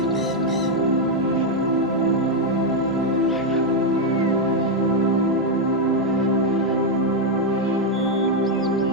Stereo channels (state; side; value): normal; both; correlation 0.01